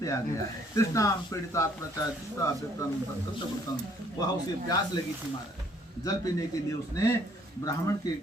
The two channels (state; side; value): normal; both; correlation 0.62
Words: आ गया है। तृष्णाम पीड़ितात्मचा वह उसे प्यास लगी थी महाराज, जल पीने के लिए उसने ब्राह्मण के